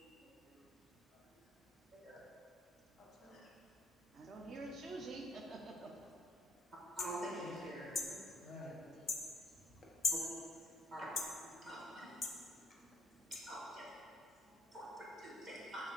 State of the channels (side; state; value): both; normal; correlation 0.63